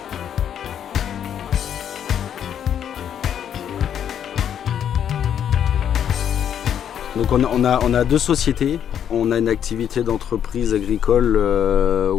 Donc on a deux sociétés. On a une activité d'entreprise agricole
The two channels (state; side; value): quieter; right; 9.2 dB